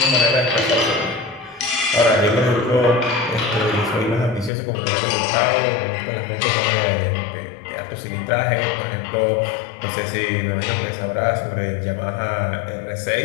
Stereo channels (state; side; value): drops out; right; at 4.5 s